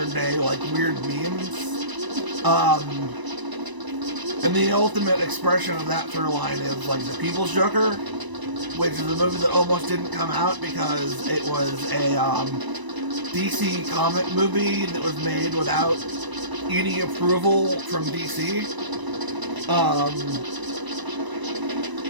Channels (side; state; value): left; late; 1.0 ms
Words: day like weird memes. And the ultimate expression of that through line is like The People's Joker, which is a movie that almost didn't come out because it was a DC comic movie that was made without any approval from DC.